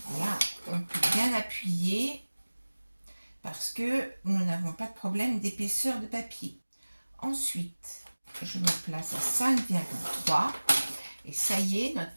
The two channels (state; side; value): inverted; both; correlation -1.00